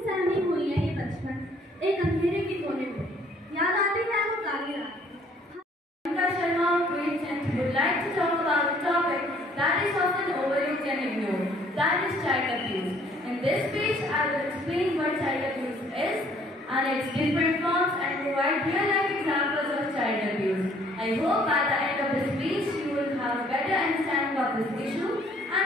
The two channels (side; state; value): both; normal; correlation 0.60